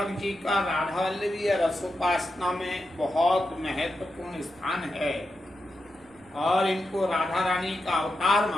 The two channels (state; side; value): noise; right; rumble, 29 dB below the sound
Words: जी का राधा वल्लभी रसोपासना में बहुत महत्वपूर्ण स्थान है और इनको राधा रानी का अवतार